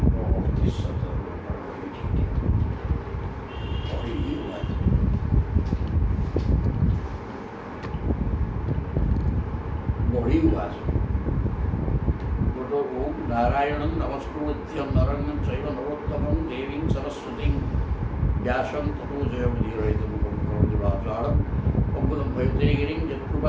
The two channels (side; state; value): both; identical; correlation 1.00